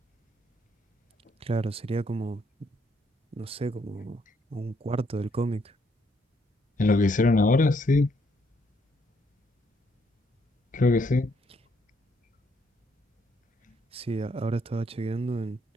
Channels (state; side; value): normal; both; correlation 0.72